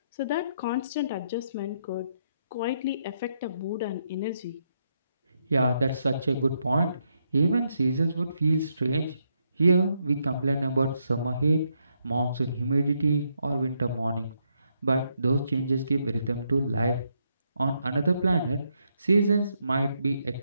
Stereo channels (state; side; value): inverted; both; correlation -0.78